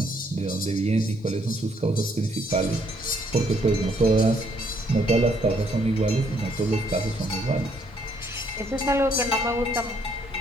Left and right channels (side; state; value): both; normal; correlation 0.68